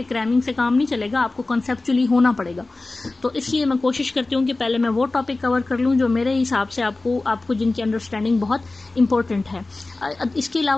क्रैमिंग से काम नहीं चलेगा, आपको कॉन्सेप्चुअली होना पड़ेगा। तो इसलिए मैं कोशिश करती हूँ कि पहले मैं वो टॉपिक कवर कर लूँ जो मेरे हिसाब से आपको जिनकी अंडरस्टैंडिंग बहुत इंपॉर्टेंट है। इसके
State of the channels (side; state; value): right; quieter; 3.2 dB